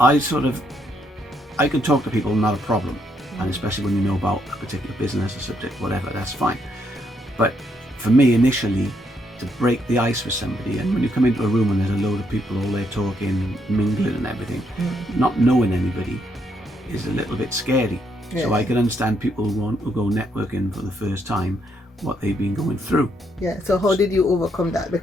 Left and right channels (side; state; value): both; normal; correlation 0.75